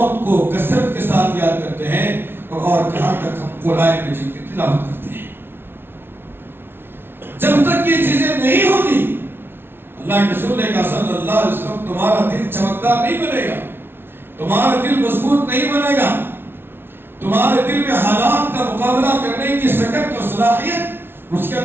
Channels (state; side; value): late; left; 0.11 ms